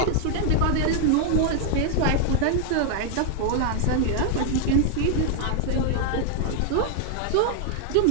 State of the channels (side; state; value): both; different; correlation 0.00